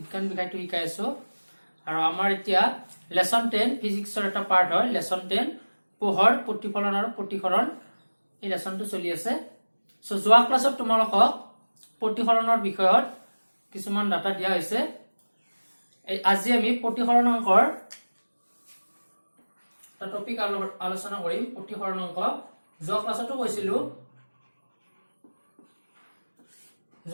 বিষয়টো শিকাই আছো। আৰু আমাৰ এতিয়া লেসন 10 ফিজিক্সৰ এটা পাৰ্ট হয়, লেসন 10 পোহৰ প্ৰতিফলন আৰু প্ৰতিসৰণ। এই লেসনটো চলি আছে। সো যোৱা ক্লাছত তোমালোকক প্ৰতিসৰণৰ বিষয়ত কিছুমান ডাটা দিয়া হৈছে। আজি আমি প্ৰতিসৰণ অংকৰ টপিক আলোচনা কৰিম। প্ৰতিসৰণ অংক যোৱা ক্লাছতো কৈছিলো,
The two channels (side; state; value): both; inverted; correlation -1.00